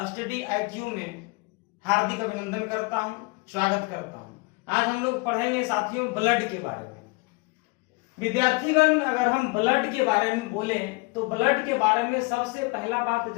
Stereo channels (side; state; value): right; quieter; 27.5 dB